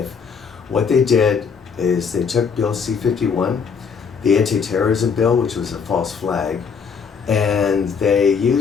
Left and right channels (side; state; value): right; quieter; 6.1 dB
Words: What they did is they took Bill C-51, the anti-terrorism bill, which was a false flag, and they